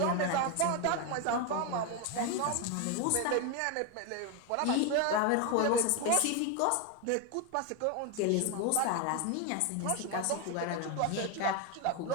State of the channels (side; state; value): both; different; correlation 0.02